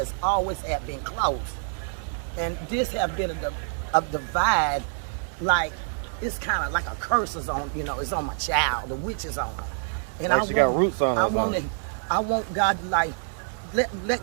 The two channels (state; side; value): silent; left; digital silence